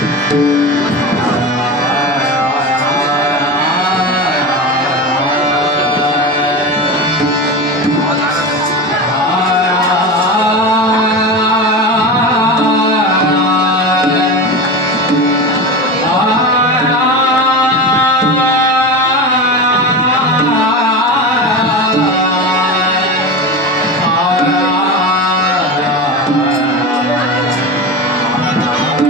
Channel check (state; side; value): normal; both; correlation 0.25